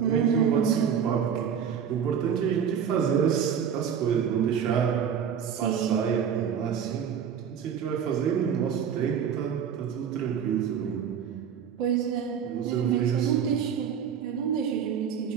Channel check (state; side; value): quieter; left; 7.9 dB